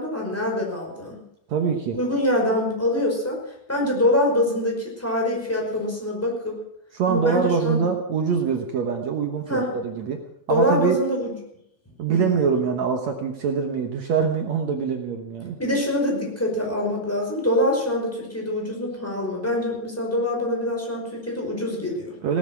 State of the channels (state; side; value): normal; both; correlation -0.10